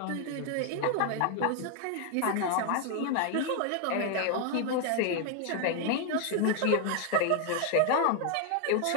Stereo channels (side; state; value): both; different; correlation 0.00